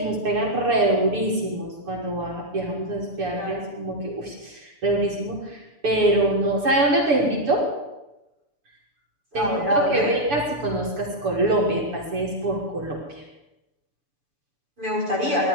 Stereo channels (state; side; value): late; left; 6.9 ms